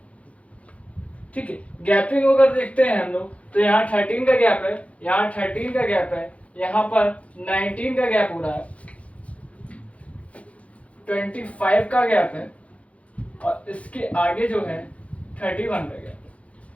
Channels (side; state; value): right; late; 0.064 ms